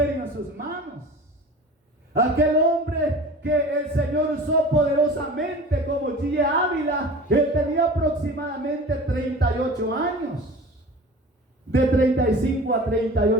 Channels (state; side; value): normal; both; correlation 0.39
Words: en sus manos. Aquel hombre que el Señor usó poderosamente como G. Ávila, él tenía aproximadamente 38 años, de 35 a